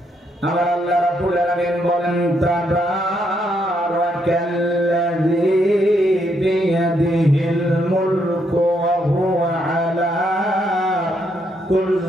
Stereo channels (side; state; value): both; normal; correlation 0.75